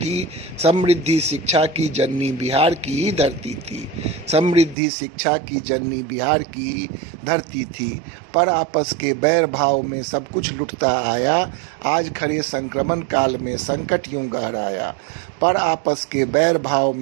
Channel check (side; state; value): left; drops out; at 4.8 s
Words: समृद्धि शिक्षा की जननी बिहार की ही धरती थी, समृद्धि शिक्षा की जननी बिहार की ही धरती थी। पर आपस के बैर भाव में सब कुछ लुटता आया, आज खड़े संक्रमण काल में संकट यूं गहराया। पर आपस के बैर भाव